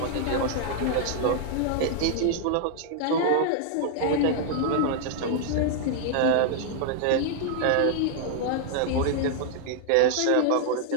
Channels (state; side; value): different; both; correlation 0.00